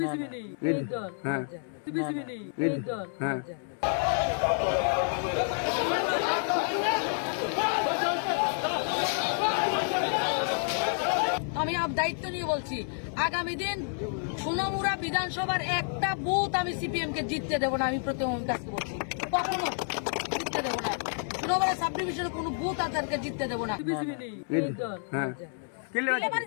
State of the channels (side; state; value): right; silent; 58 dB below the other